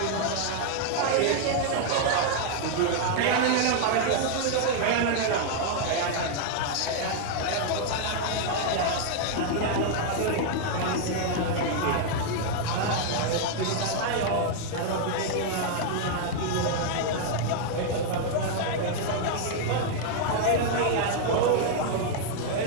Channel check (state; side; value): different; both; correlation 0.00